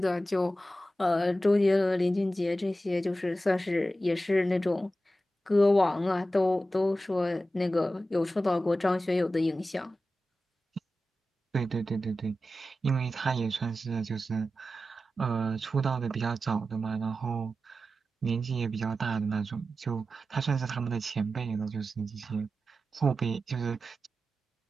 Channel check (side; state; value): both; normal; correlation 0.92